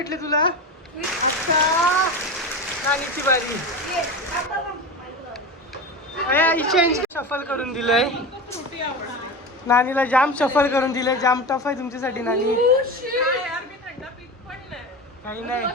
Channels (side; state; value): both; normal; correlation 0.26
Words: तुला. अच्छा नानीची बारी. चेंज शफल करून दिलंय. नानीला जाम शफल करून दिलंय. जाम टफ आहे तुमच्यासाठी नानी. काही नाही.